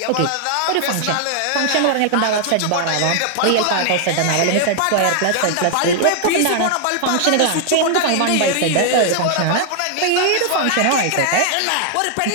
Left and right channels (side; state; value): both; different; correlation 0.00